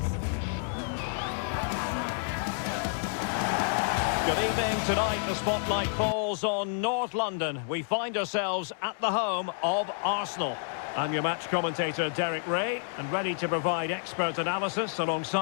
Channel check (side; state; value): right; silent; 58 dB below the other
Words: Good evening. Tonight the spotlight falls on North London. We find ourselves at the home of Arsenal. I'm your match commentator, Derek Ray, and ready to provide expert analysis